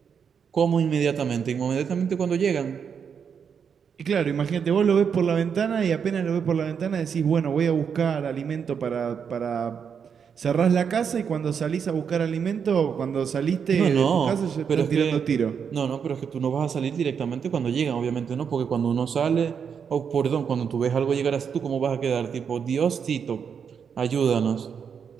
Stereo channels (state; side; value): quieter; left; 7.0 dB